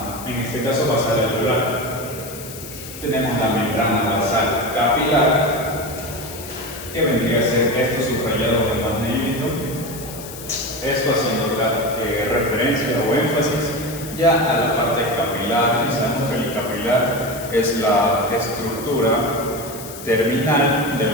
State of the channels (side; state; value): left; noise; hiss, 13 dB below the sound